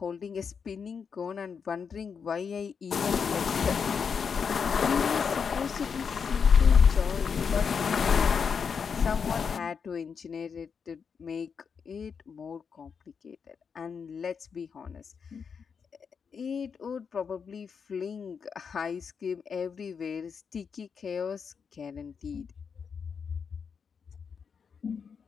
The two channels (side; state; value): right; quieter; 6.3 dB